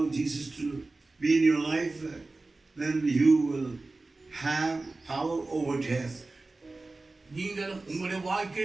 Jesus to be in your life, then you will have power over death. நீங்கள் உங்களுடைய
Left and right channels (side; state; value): left; quieter; 3.3 dB